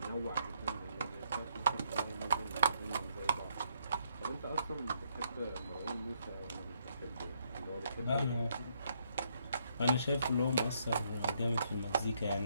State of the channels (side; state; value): both; inverted; correlation -0.74